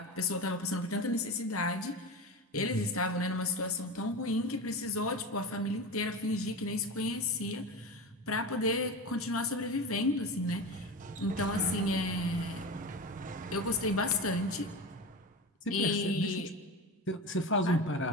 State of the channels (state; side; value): normal; both; correlation 0.25